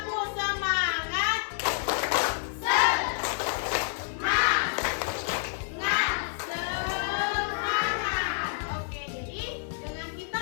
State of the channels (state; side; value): silent; right; digital silence